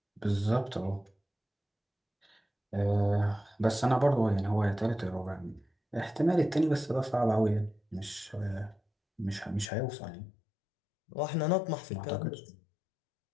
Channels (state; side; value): drops out; right; at 9.7 s